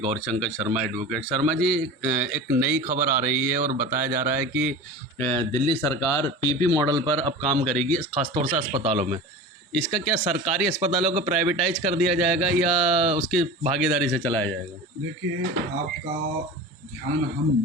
शर्मा एडवोकेट। शर्मा जी, एक नई खबर आ रही है और बताया जा रहा है कि दिल्ली सरकार पीपी मॉडल पर अब काम करेगी, खासतौर से अस्पतालों में। इसका क्या सरकारी अस्पतालों को प्राइवेटाइज कर दिया जाएगा या उसकी भागीदारी से चलाया जाएगा? देखिए, आपका ध्यान हम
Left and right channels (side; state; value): both; normal; correlation 0.33